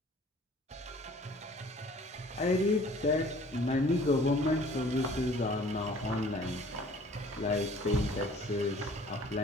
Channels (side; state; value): both; normal; correlation 0.52